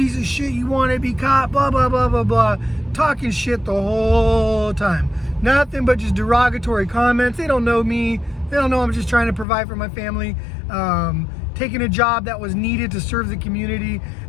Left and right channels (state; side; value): drops out; right; at 9.5 s